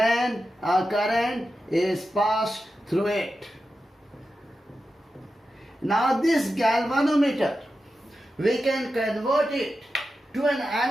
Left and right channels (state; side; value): normal; both; correlation 0.91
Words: a current is passed through it. Now this galvanometer, we can convert it to an